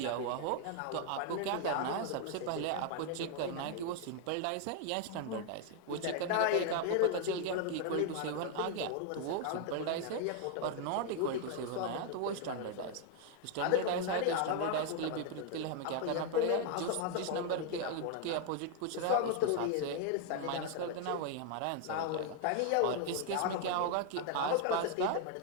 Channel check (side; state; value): both; different; correlation 0.00